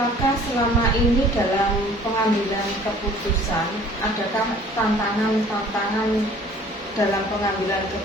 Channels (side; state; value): both; normal; correlation 0.51